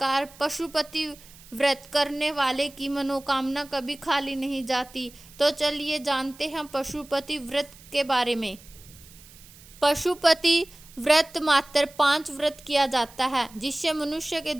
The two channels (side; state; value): right; noise; hiss, 22 dB below the sound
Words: पशुपति व्रत करने वाले की मनोकामना कभी खाली नहीं जाती। तो चलिए जानते हैं पशुपति व्रत के बारे में। पशुपति व्रत मात्र 5 व्रत किया जाता है जिससे मनुष्य के